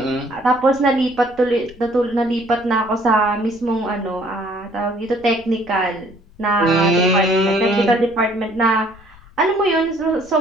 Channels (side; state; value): left; noise; rumble, 25 dB below the sound